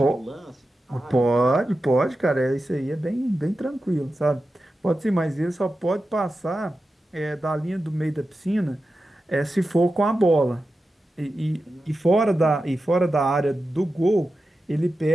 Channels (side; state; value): both; normal; correlation 0.92